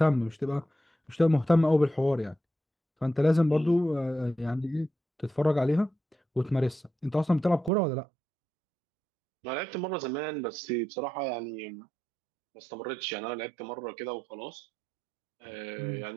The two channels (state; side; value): drops out; left; at 7.7 s